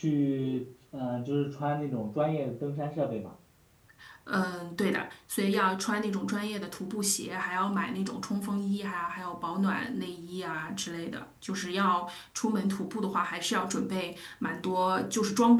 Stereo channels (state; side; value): identical; both; correlation 1.00